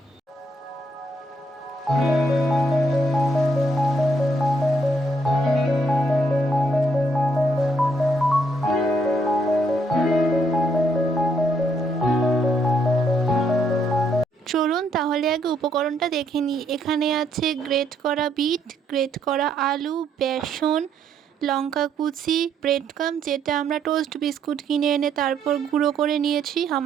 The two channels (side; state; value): both; normal; correlation 0.72